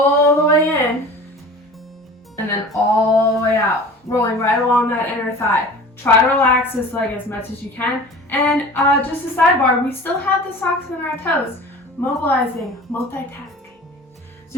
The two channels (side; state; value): both; normal; correlation 0.40